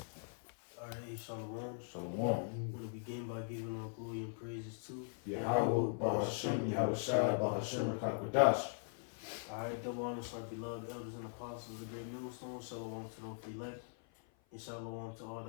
Alright, Shalom. Shalom. I'm going to begin by giving our glory and praises to Yahweh, Ba'ashem, Yahweh Shai, Ba'ashem, Rakakwadash. Alright, double honors to our beloved elders and apostles of the great millstone. Shalom to those elect. And shalom to all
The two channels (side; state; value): right; silent; 51 dB below the other